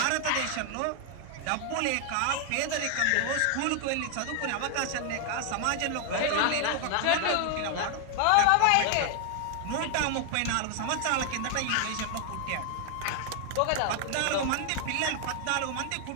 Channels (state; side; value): different; both; correlation 0.00